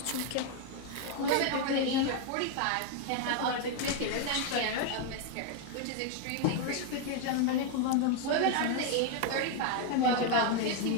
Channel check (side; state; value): both; different; correlation 0.01